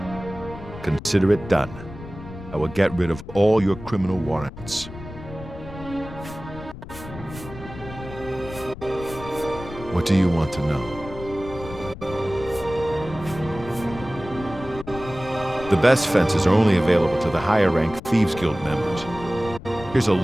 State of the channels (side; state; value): left; noise; rumble, 13 dB below the sound